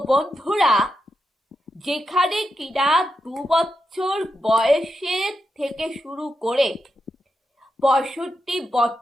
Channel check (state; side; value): normal; both; correlation 0.86